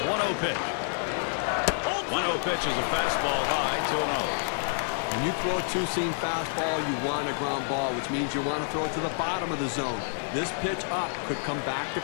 The 1-0 pitch. 1-0 pitch is a fastball high, 2-0. When you throw a two-seam fastball, you want a ground ball, which means you want to throw it to the bottom of the zone. This pitch up could come back to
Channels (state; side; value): silent; right; digital silence